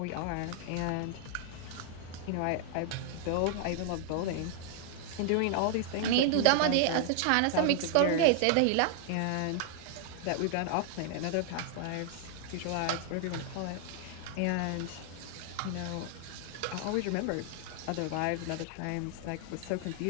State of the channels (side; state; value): both; different; correlation 0.00